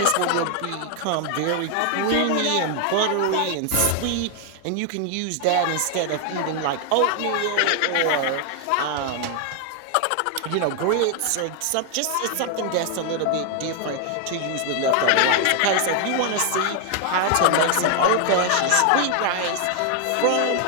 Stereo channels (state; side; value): different; both; correlation 0.00